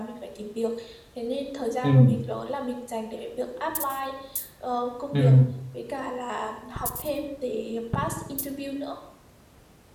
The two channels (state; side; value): identical; both; correlation 1.00